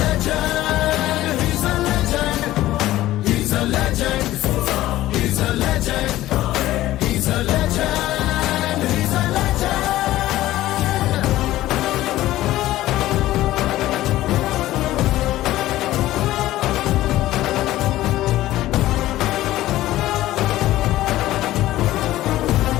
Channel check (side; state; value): right; quieter; 15.4 dB